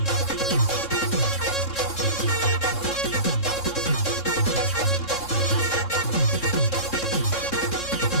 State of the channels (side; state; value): right; late; 3.7 ms